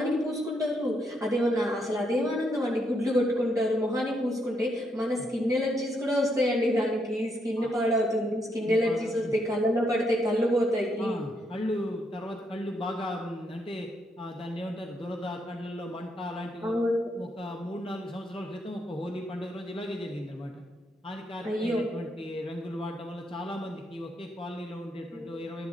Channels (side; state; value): both; normal; correlation 0.76